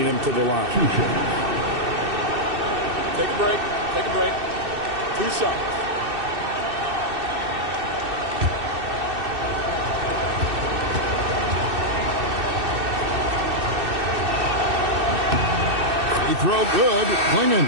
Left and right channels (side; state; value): left; late; 2.6 ms